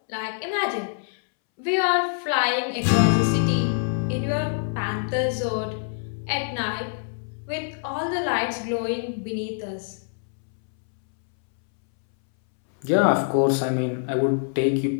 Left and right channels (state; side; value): silent; right; 62 dB below the other